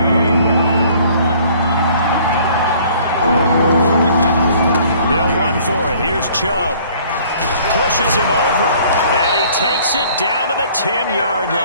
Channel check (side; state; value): both; inverted; correlation -0.55